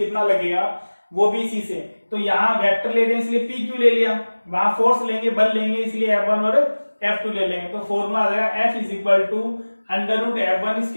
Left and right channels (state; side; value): inverted; both; correlation -1.00